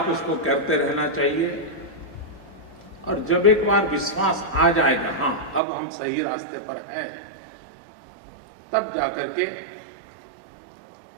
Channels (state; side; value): drops out; left; at 5.6 s